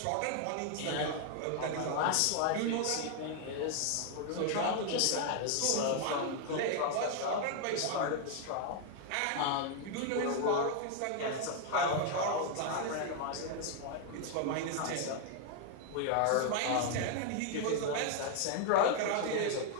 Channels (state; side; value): different; both; correlation 0.00